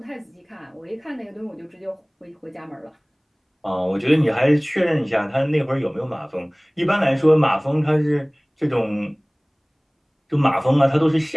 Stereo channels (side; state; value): both; identical; correlation 1.00